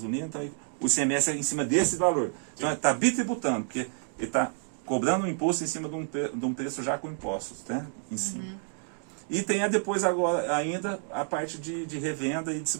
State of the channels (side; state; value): left; silent; 58 dB below the other